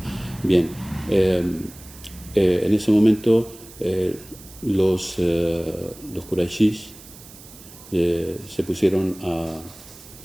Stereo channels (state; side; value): noise; right; hiss, 19 dB below the sound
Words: Bien, en ese momento los Qurayshis se pusieron